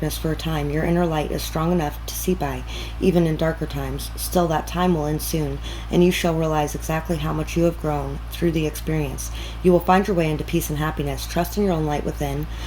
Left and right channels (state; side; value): identical; both; correlation 1.00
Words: for a time. Your inner light is strong enough to see by, even in darker times. Still, that time will end soon, and you shall realize exactly how much you have grown through the experience. You will find your way into peace and happiness. Trust in your own light within,